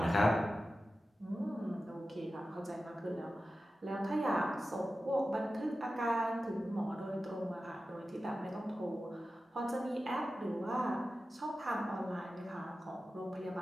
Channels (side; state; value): both; normal; correlation 0.94